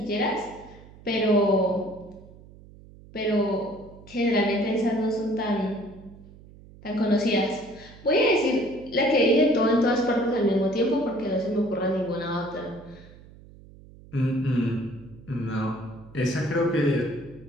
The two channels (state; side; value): noise; right; hum, 21 dB below the sound